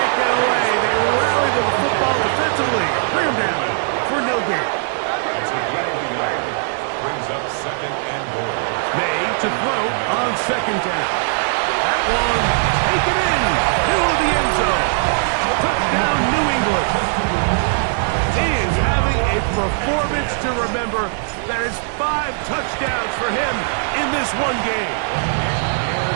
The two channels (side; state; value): left; silent; 66 dB below the other